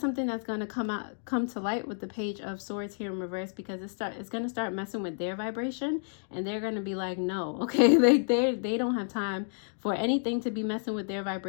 something that's going to come to light with the Page of Swords here in reverse, because it's going to start messing with their vibration, and they're going to be like, no, okay, they don't have time for anything to be messing with their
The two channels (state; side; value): silent; right; digital silence